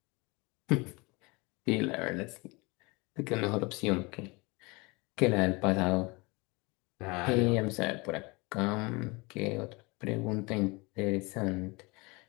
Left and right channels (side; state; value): right; quieter; 26.3 dB